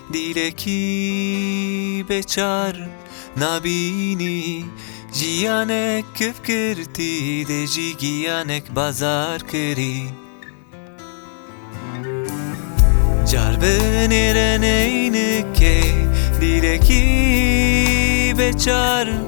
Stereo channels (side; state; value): right; silent; digital silence